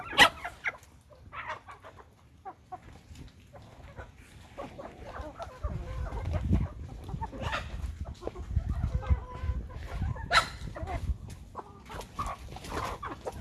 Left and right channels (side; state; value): both; identical; correlation 1.00